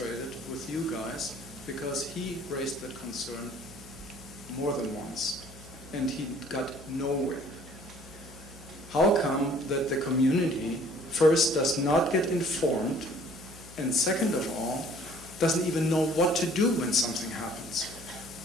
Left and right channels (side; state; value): left; noise; hum, 19 dB below the sound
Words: with you guys because he raised that concern more than once and he got nowhere. How come that the community first does not get informed and second of all doesn't even know what to do when something happens?